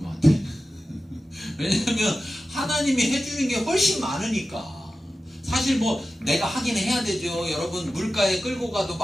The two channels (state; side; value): normal; both; correlation 0.94